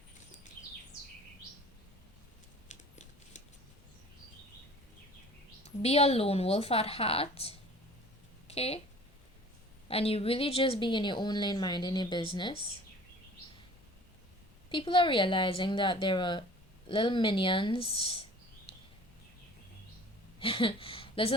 be a lone wolf at heart, okay, and you really just be in your own lane minding your business, people are realizing that there are little minions.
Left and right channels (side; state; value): both; normal; correlation 0.46